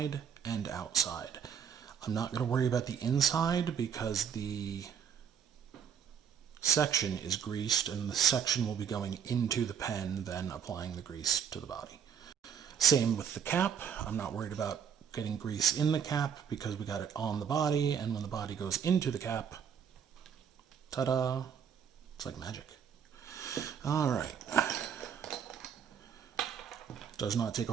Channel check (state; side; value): quieter; left; 7.7 dB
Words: and outside. I'm not going to worry about the inside because the section is greased and the section will be going into the pen, then applying the grease to the body. Same with the cap. I'm not worried about getting grease in the cap because we got it on the body, and when the body goes into the cap, ta-da, it's like magic. All right. Does not take a